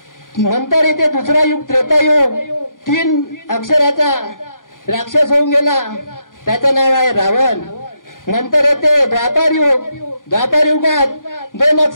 नंतर इथे दुसरा युग त्रेतायुग। 3 अक्षराचा राक्षस होऊन गेला, त्याचं नाव आहे रावण। नंतर येते द्वापार युग। द्वापार युगात 2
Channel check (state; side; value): late; right; 0.89 ms